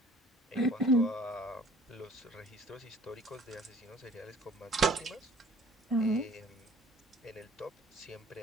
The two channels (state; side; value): normal; both; correlation 0.53